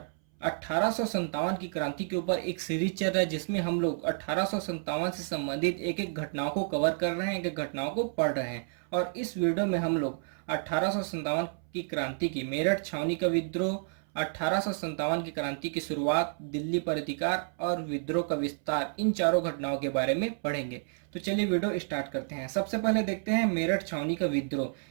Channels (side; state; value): left; silent; 58 dB below the other